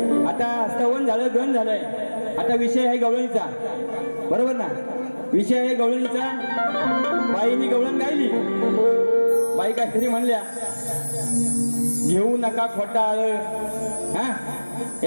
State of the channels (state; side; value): inverted; both; correlation -1.00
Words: आता स्तवन झालं, गण झालंय, आता विषय आहे गवळणीचा, बरोबर ना? विषय आहे गवळणीचा. बाईनी गवळण गायली, बाई काहीतरी म्हणल्या, घेऊ नका खोटाळ, हा